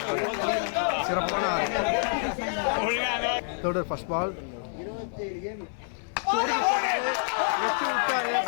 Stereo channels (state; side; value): silent; right; digital silence